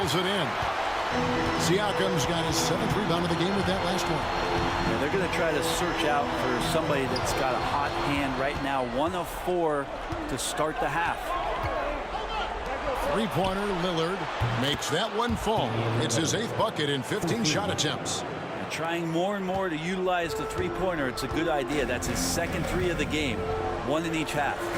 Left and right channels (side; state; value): both; identical; correlation 1.00